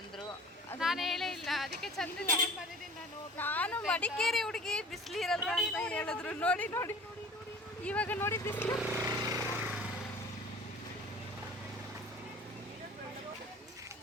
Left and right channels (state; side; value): normal; both; correlation 0.44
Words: ಅಂದರು. ನಾನು ಹೇಳೇ ಇಲ್ಲ, ಅದಕ್ಕೆ ಚಂದ ನಾನು ಮಡಿಕೇರಿ ಹುಡುಗಿ, ಬಿಸಿಲು ಇರಲ್ಲ ಅಂತ ಹೇಳಿದ್ರು. ನೋಡಿ ನೋಡಿ ಇವಾಗ ನೋಡಿ ಬಿಸಿಲು.